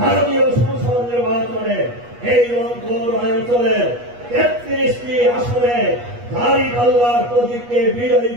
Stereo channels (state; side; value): late; left; 8.3 ms